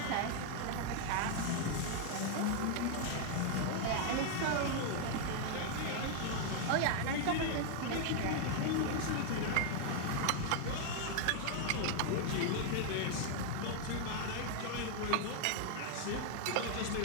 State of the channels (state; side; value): different; both; correlation 0.00